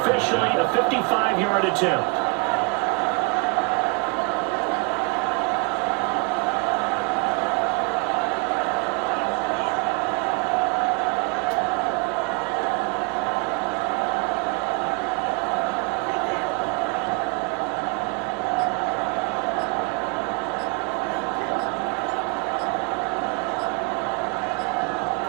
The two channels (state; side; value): quieter; left; 30.4 dB